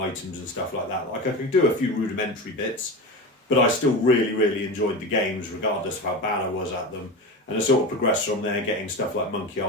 and stuff like that. Like, I could do a few rudimentary bits, but I still really, really enjoyed the games regardless of how bad I was at them. And I sort of progressed from there, getting stuff like Monkey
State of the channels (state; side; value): normal; both; correlation 0.26